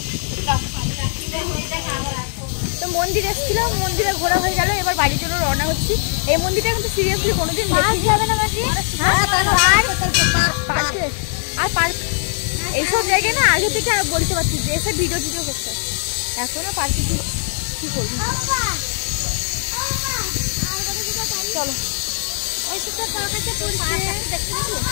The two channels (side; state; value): right; silent; 66 dB below the other